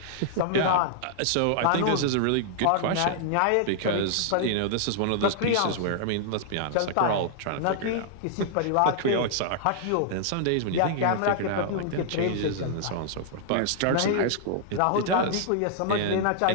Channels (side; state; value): both; different; correlation -0.01